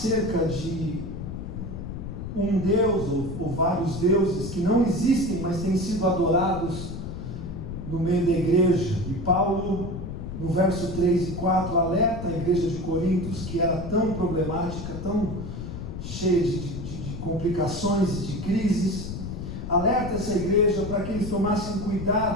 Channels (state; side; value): noise; left; rumble, 7 dB below the sound